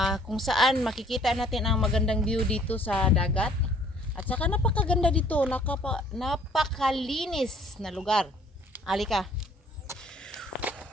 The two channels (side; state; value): both; normal; correlation 0.58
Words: Kung saan makikita natin ang magandang view dito sa dagat. At saka napakaganda dito. Napakalinis na lugar. Halika.